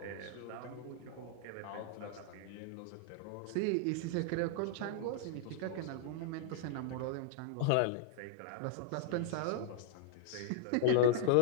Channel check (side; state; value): both; different; correlation -0.01